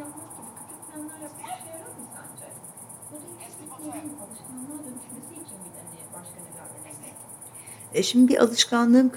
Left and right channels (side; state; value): both; identical; correlation 1.00